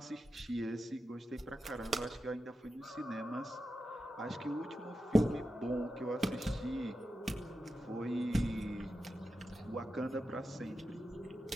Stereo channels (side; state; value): both; normal; correlation 0.90